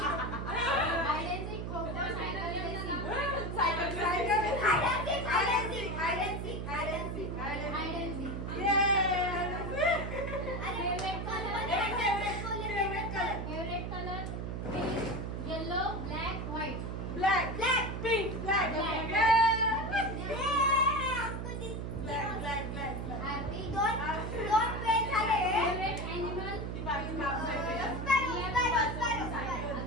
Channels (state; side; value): noise; right; hum, 4 dB below the sound